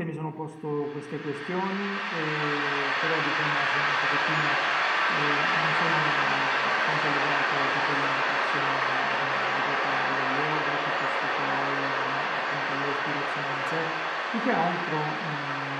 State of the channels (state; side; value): identical; both; correlation 1.00